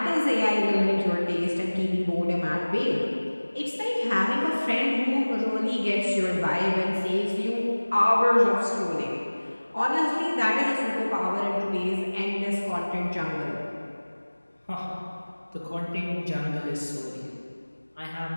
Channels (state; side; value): inverted; both; correlation -1.00